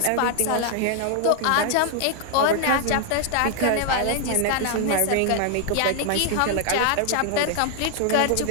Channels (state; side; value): different; both; correlation 0.00